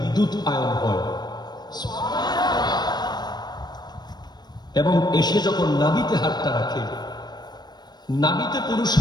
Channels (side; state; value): right; late; 0.20 ms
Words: আয়ন হয়, এবং এসে যখন নাভিতে হাতটা রাখে, নাভিতে পুরুষ